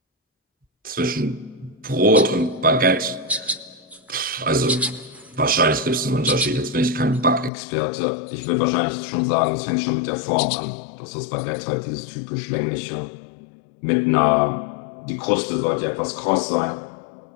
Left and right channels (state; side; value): drops out; right; at 7.5 s